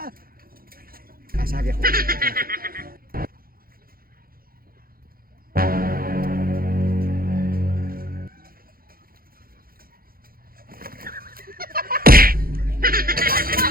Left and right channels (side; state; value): left; late; 0.42 ms